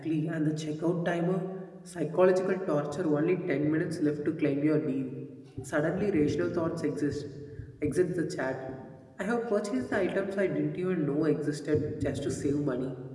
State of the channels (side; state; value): both; identical; correlation 1.00